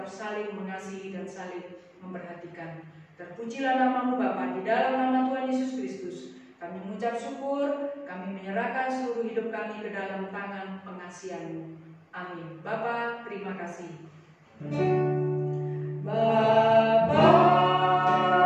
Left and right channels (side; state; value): both; identical; correlation 1.00